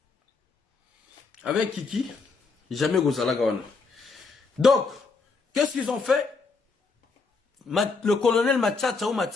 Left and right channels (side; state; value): right; quieter; 4.3 dB